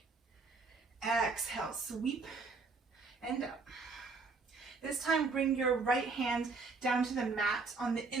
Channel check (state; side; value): quieter; left; 4.1 dB